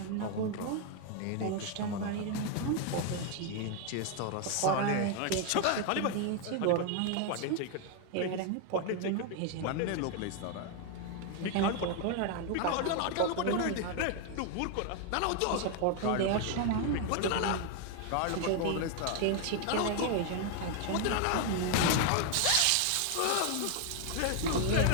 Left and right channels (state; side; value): different; both; correlation 0.00